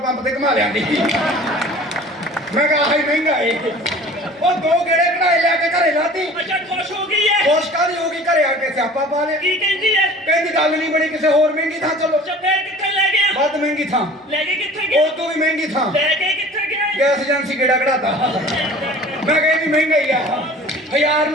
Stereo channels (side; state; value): both; normal; correlation 0.45